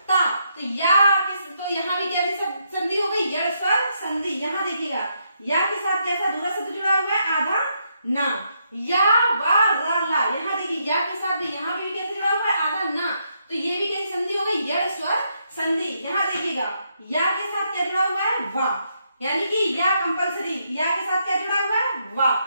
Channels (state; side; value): inverted; both; correlation -0.77